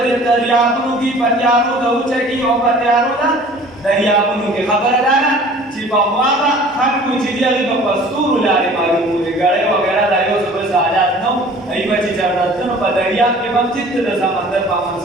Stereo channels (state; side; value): normal; both; correlation 0.48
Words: دریابونو کې په تیارو د اوچه کې او په تیارو د دریابونو کې خبره ده چې په هوا به خلکو چې دي هغې په ستورو لارې معلوموي ګړۍ وغیره دا یو څه بل حالات نه وو هغوی به چې چېرته تلو په دریا دریاب کې هم چې د سمندر په منځ